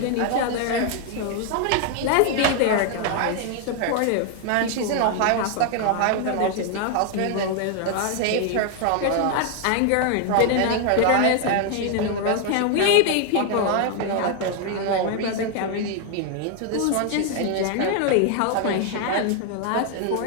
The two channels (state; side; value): different; both; correlation 0.00